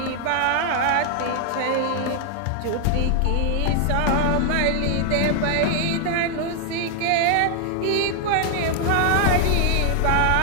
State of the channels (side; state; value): both; different; correlation 0.00